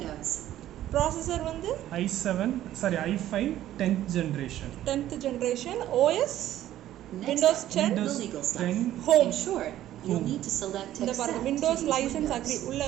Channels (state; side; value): quieter; left; 13.0 dB